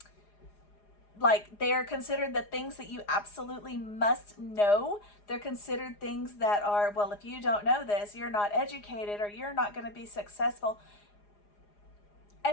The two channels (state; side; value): late; right; 4.9 ms